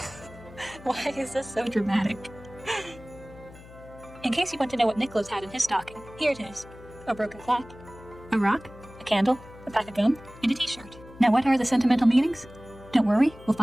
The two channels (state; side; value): noise; left; hum, 19 dB below the sound